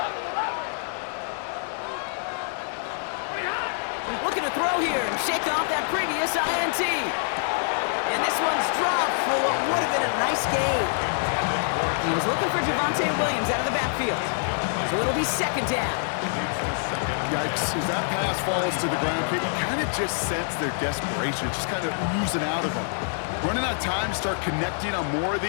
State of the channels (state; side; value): silent; right; digital silence